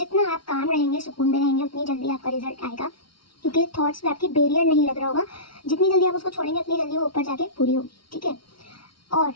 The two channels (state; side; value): late; right; 0.74 ms